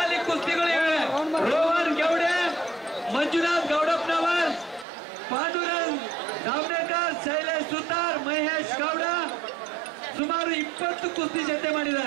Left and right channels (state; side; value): drops out; left; at 4.9 s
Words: ಕುಸ್ತಿಗಳಿವೆ। ರೋಹನ್ ಗೌಡೆ, ಮಂಜುನಾಥ್ ಗೌಡಪ್ಪನವರ್, ಪಾಂಡುರಂಗ್ ದಾವಣೇಕರ್, ಶೈಲೇಶ್ ಸುತಾರ್, ಮಹೇಶ್ ಗೌಡ ಸುಮಾರು 20 ಕುಸ್ತಿ ಜೊತೆ